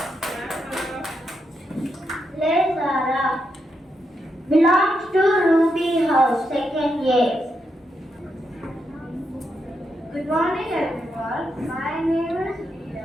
Play Zara. Belongs to Ruby House, second year. Good morning everyone. My name is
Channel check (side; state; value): both; normal; correlation 0.82